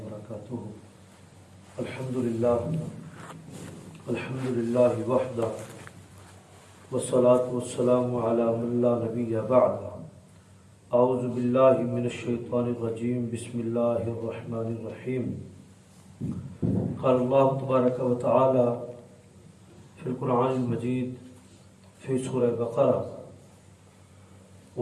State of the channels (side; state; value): both; identical; correlation 1.00